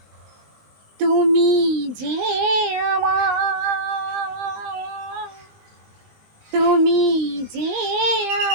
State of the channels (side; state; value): left; late; 20 ms